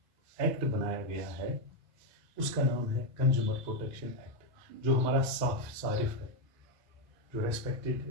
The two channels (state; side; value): normal; both; correlation 0.04